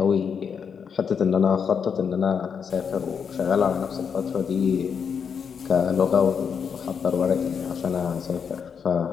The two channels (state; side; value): quieter; right; 6.7 dB